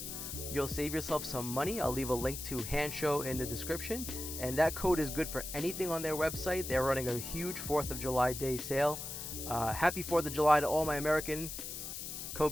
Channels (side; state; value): left; noise; hiss, 7 dB below the sound